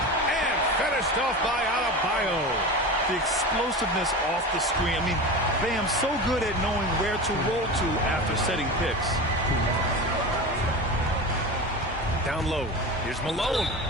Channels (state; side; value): normal; both; correlation 0.28